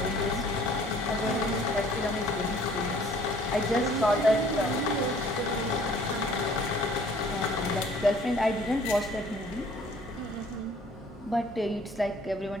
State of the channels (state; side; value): normal; both; correlation 0.55